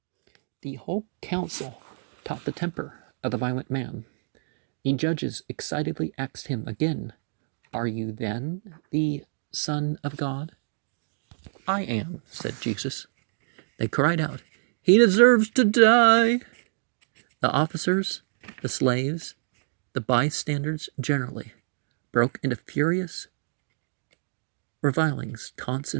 The whole council taught the temper of the violent man. The judges excitedly asked him again, "Are you then the Son of God?" "I am," said Jesus. They cried out, "He deserves to die." The officers, the slaves, the bystanders generally broke into furious revilings, taunts,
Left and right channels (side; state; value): left; silent; digital silence